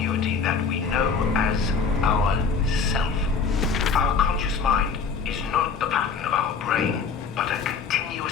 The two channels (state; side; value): quieter; right; 5.4 dB